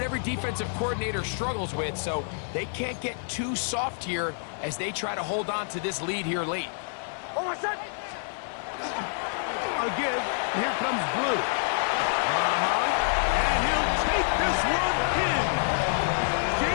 every defensive coordinator struggles with, so they can't get too soft here as they try to hold on to this lead here late. Again, here comes Blue. And he'll take this one in.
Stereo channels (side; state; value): right; silent; 60 dB below the other